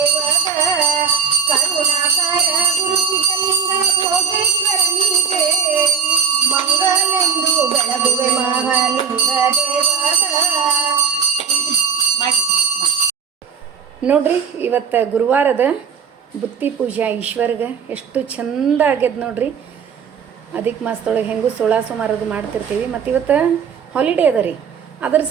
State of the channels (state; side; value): quieter; left; 6.7 dB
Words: ಕರುಣಾಕರ ಗುರುಸಿದ್ಧಲಿಂಗ ಭೋಗೇಶ್ವರನಿಗೆ ಮಂಗಲೆಂದು ಬೆಳಗುವೆ ಮಹಾಲಿಂಗ ದೇವದ. ನೋಡ್ರಿ, ಇವತ್ತು ಗುರುವಾರದ ಬುತ್ತಿ ಪೂಜೆ ಈಶ್ವರ್ಗೆ ಎಷ್ಟು ಚಂದ ಆಗ್ಯದ ನೋಡ್ರಿ. ಅದಕ್ಕೆ ಮಾಸದೊಳಗೆ ಹೆಂಗೂ 16 ಸೋಮವಾರದು ಮಾಡ್ತಿರ್ತೀವಿ. ಮತ್ತು ಇವತ್ತು ಹಾಲಿಡೇ ಅದ ರೀ, ಅದರ